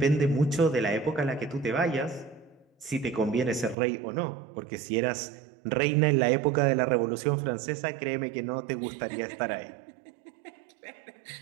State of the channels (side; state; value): left; drops out; at 3.8 s